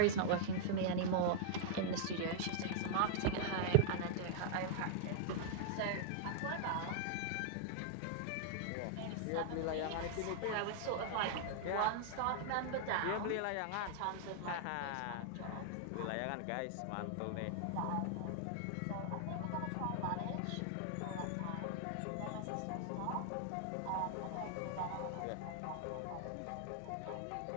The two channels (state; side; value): different; both; correlation -0.01